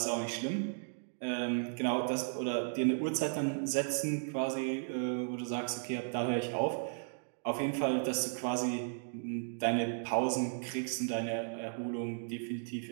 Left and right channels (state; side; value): silent; left; digital silence